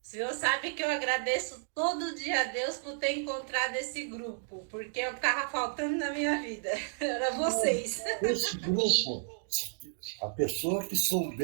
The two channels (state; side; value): silent; left; digital silence